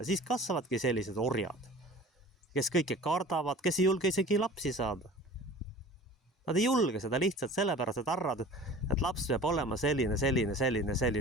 Siis kasvavadki sellised orjad, kes kõike kardavad, kes ei julge isegi lapsi saada. Nad ei julge seda lihtsalt sellepärast, et arvavad, et laps peab olema selline.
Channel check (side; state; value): both; normal; correlation 0.41